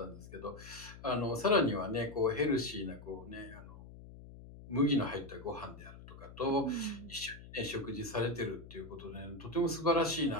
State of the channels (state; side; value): noise; left; hum, 16 dB below the sound